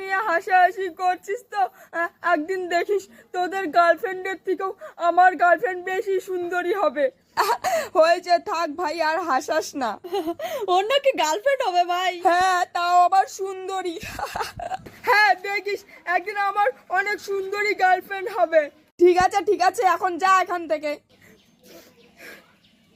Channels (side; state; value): both; identical; correlation 1.00